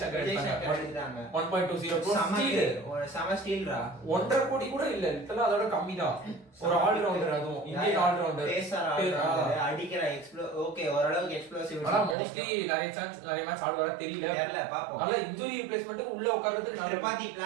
சங்கர் எடுத்தாங்க 1.20 சம ஸ்டீல்ரா 1.5 கோடி கூட இல்ல இதெல்லாம் அதோட கம்மி தான் ஒரு ஆல் ரவுண்டர் அதுவும் இந்தியன் ஆல் ரவுண்டர் அடிக்கிற ஓகே ஓரளவுக்கு எக்ஸ்ப்ளோசிவ் ஆனா மோஸ்ட்லி நிறைய மேட்ச் ஆடுவாரா தெரியல பாப்போம் நல்ல இன்ஜூரி ரிப்ளேஸ்மென்ட் உள்ள உட்கார்றது திரிபாதி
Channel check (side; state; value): left; drops out; at 12.2 s